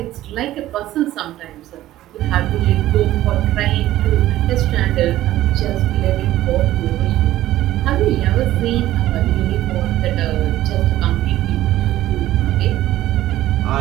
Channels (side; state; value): left; quieter; 14.6 dB